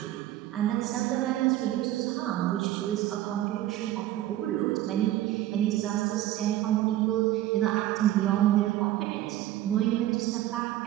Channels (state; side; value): quieter; left; 14.1 dB